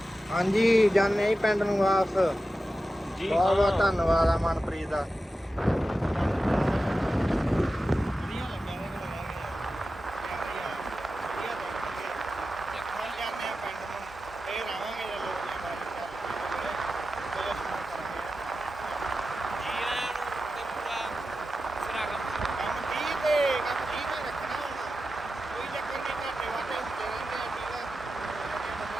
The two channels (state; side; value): normal; both; correlation 0.92